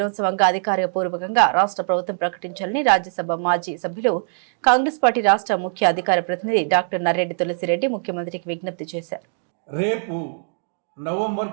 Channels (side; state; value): left; silent; digital silence